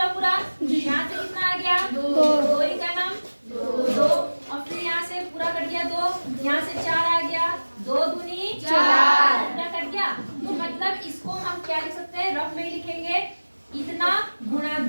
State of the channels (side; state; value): both; inverted; correlation -1.00